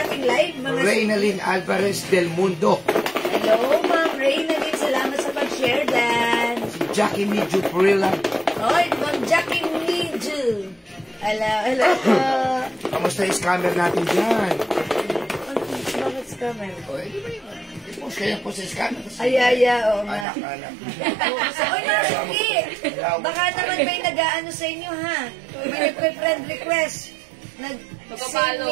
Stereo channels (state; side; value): drops out; left; at 20.2 s